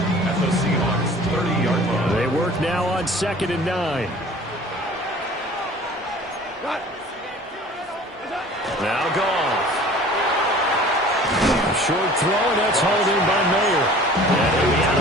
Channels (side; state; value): both; normal; correlation 0.46